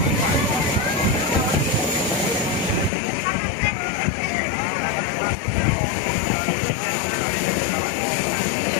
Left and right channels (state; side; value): drops out; right; at 2.9 s